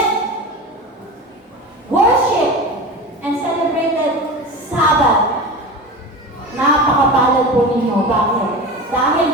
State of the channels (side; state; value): both; normal; correlation 0.29